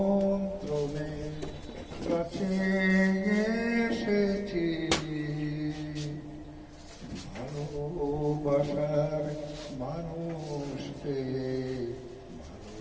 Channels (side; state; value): both; identical; correlation 1.00